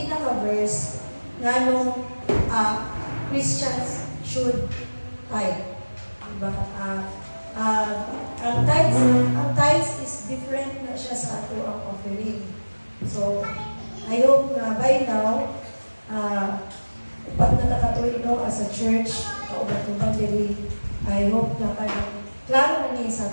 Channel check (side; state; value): both; inverted; correlation -1.00